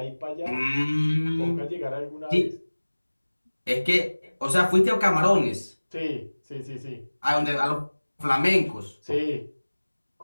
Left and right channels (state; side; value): inverted; both; correlation -1.00